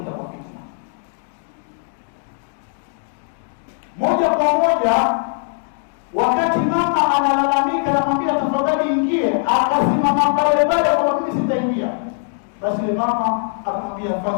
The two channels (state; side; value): silent; right; digital silence